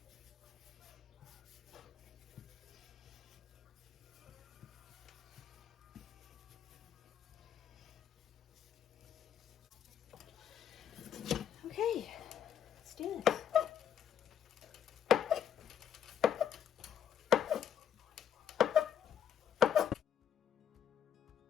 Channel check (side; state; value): right; quieter; 8.9 dB